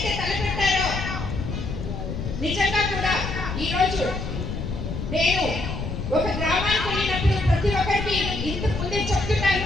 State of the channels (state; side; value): noise; left; rumble, 5 dB below the sound